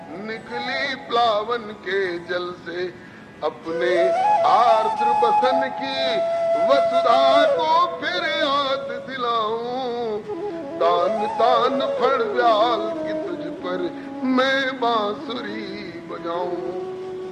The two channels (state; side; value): identical; both; correlation 1.00